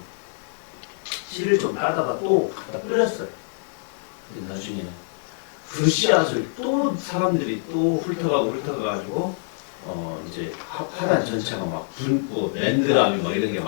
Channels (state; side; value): silent; right; 62 dB below the other